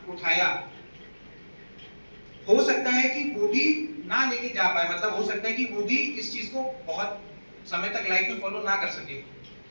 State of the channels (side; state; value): both; inverted; correlation -1.00